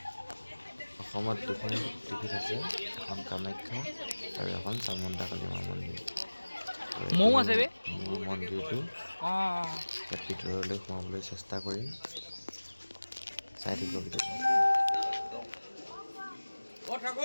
অসমত দুখন শক্তিপীঠ আছে এখন কামাখ্যা আৰু এখন চামুণ্ডাকালী মা মন্দিৰ মৌ আছে বে মোৰ মন্দিৰটো ইয়াত ভিতৰলৈ সোমাবলৈ চেষ্টা কৰিম চাই থাকিব ভিতৰত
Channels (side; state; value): both; inverted; correlation -1.00